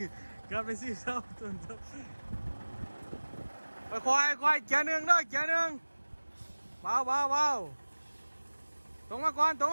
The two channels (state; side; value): inverted; both; correlation -1.00